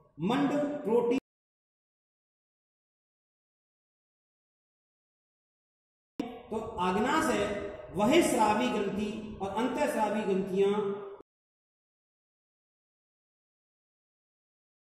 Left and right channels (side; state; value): both; identical; correlation 1.00